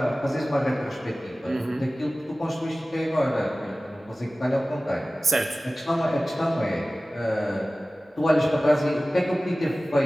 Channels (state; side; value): normal; both; correlation 0.97